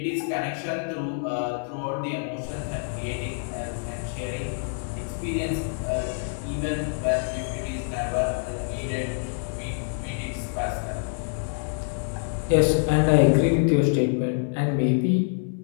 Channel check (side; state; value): right; silent; digital silence